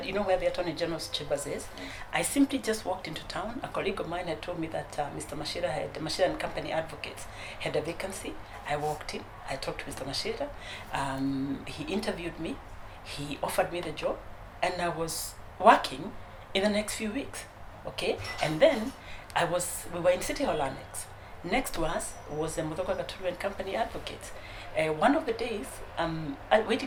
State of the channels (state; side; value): identical; both; correlation 1.00